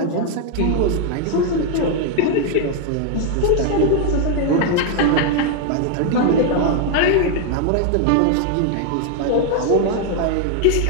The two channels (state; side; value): different; both; correlation 0.00